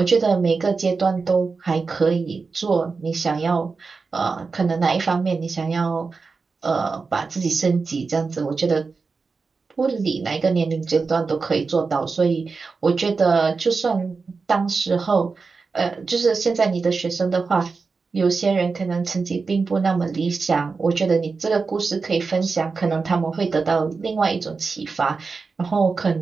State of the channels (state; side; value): quieter; left; 4.5 dB